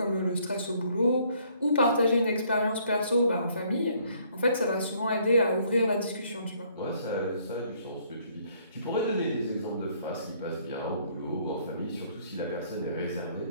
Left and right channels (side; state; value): both; inverted; correlation -0.64